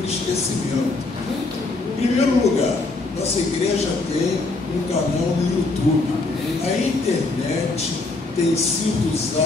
esquecimento. Em primeiro lugar, Nossa igreja tem um canal no YouTube. A internet tem sido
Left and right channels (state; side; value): quieter; right; 3.4 dB